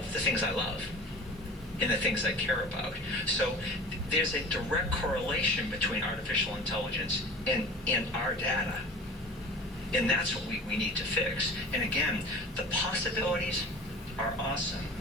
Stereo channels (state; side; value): normal; both; correlation 0.40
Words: the things I love and the things I care about. So there's a direct correlation between artificial intelligence and our data. And that's what we need to fix. And again, the possibilities are awesome